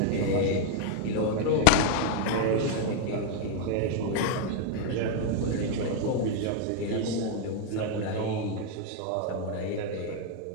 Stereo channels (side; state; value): both; different; correlation 0.00